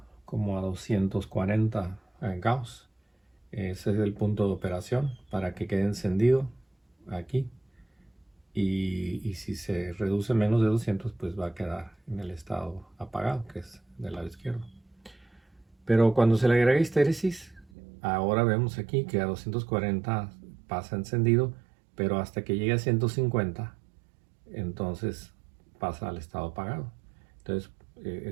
como a 240 Gauss. Ese es el punto de operación para que quede encendido aquí. Y si se reduce menos de 200, pues va a quedar en el estado apagado, que es del lado izquierdo. Pero cuando se le agrega histéresis, ahora vemos aquí que a 240 pasa encendido, pero hasta que llegue a 150, entonces pasa al estado apagado. Entonces,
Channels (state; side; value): drops out; left; at 17.7 s